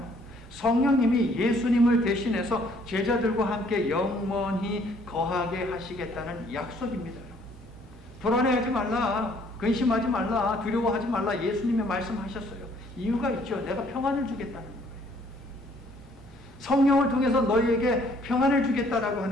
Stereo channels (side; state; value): both; normal; correlation 0.62